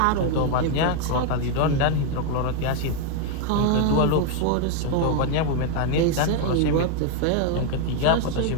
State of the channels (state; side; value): different; both; correlation 0.01